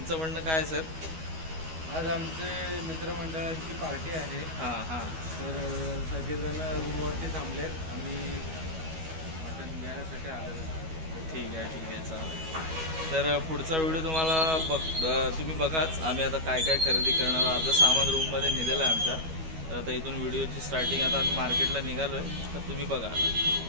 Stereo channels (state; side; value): late; left; 12 ms